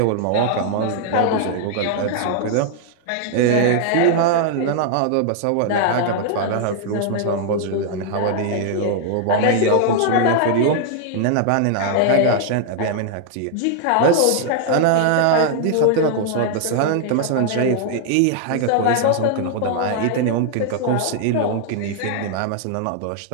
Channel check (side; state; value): both; different; correlation -0.01